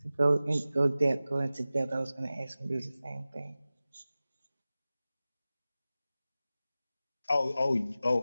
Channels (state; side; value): inverted; both; correlation -0.96